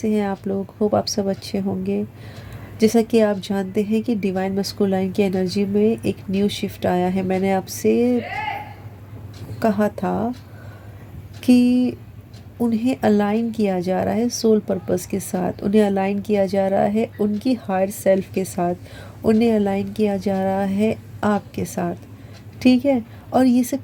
हैं आप लोग। होप आप सब अच्छे होंगे। जैसा कि आप जानते हैं कि डिवाइन मस्कुलाइन की एनर्जी में एक न्यू शिफ्ट आया है। मैंने आपसे कहा था कि उन्हें अलाइन किया जा रहा है सोल पर्पस के साथ, उन्हें अलाइन किया जा रहा है उनकी हायर सेल्फ के साथ, उन्हें अलाइन किया जा रहा है आपके साथ। ठीक है। और ये सब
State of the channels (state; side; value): identical; both; correlation 1.00